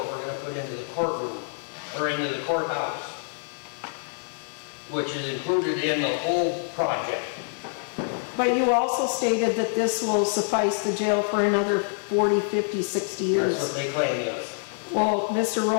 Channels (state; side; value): silent; right; 61 dB below the other